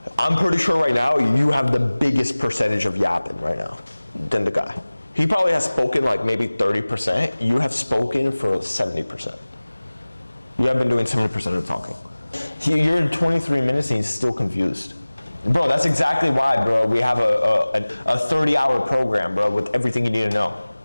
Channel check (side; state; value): both; inverted; correlation -0.99